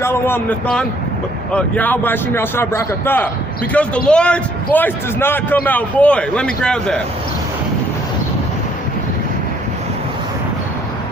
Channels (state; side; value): normal; both; correlation 0.64